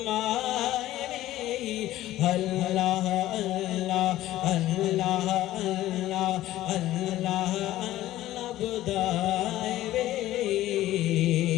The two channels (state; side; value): quieter; right; 14.9 dB